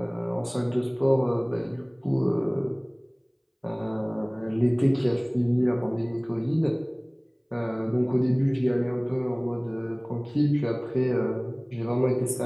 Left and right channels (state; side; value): identical; both; correlation 1.00